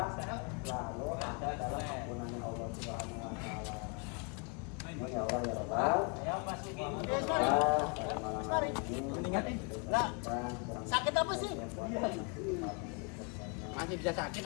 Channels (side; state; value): right; quieter; 34.5 dB